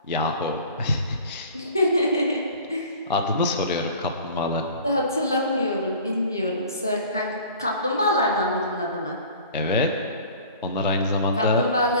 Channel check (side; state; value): both; inverted; correlation -0.44